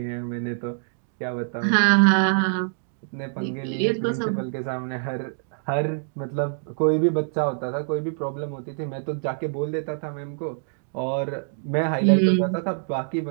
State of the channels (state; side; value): silent; left; digital silence